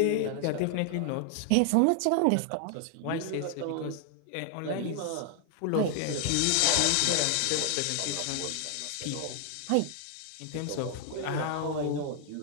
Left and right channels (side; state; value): both; different; correlation 0.00